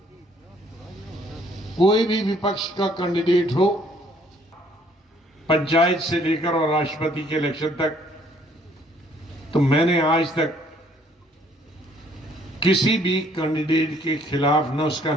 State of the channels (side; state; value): both; normal; correlation 0.63